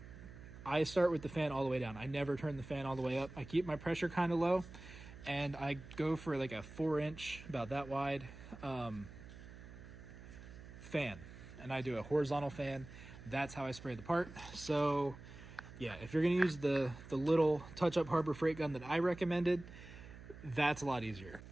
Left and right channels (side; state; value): right; noise; hum, 15 dB below the sound